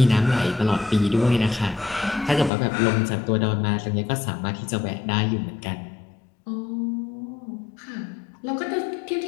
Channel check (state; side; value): drops out; right; at 2.5 s